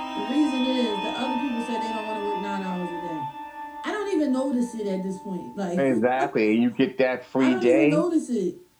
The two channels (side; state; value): both; identical; correlation 1.00